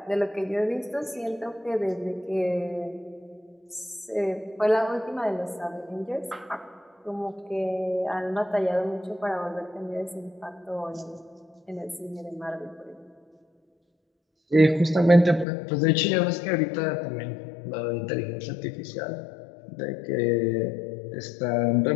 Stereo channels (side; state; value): right; drops out; at 15.5 s